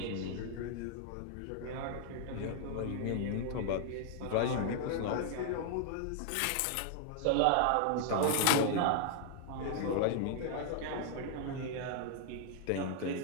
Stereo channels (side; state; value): both; different; correlation -0.01